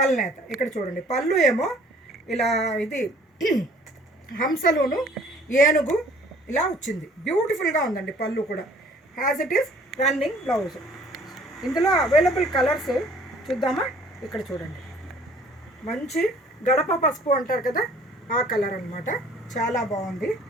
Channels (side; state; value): both; normal; correlation 0.55